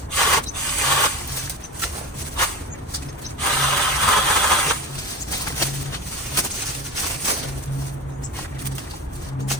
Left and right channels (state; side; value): normal; both; correlation 0.27